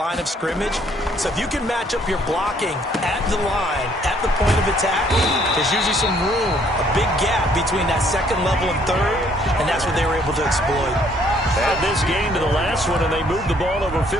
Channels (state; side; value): normal; both; correlation 0.64